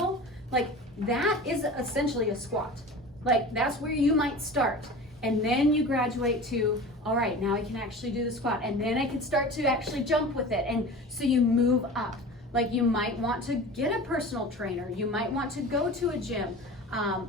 like, that is essentially a squat. Like, that's where you might start. And then you graduate to, all right, now I can actually do the squat. And then I can start to actually jump with it. And so you move up. Like, you might want to get a personal trainer. You might want to go to a gym.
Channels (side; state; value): both; normal; correlation 0.36